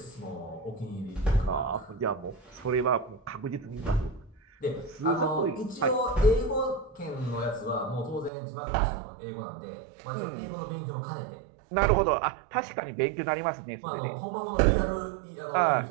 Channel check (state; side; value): drops out; left; at 8.3 s